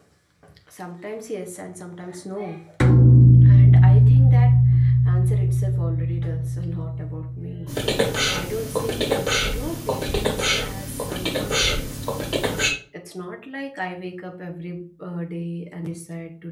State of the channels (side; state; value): both; identical; correlation 1.00